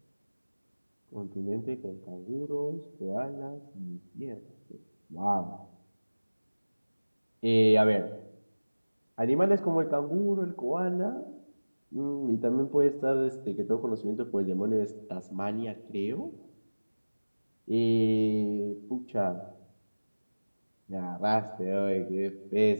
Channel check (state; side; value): inverted; both; correlation -1.00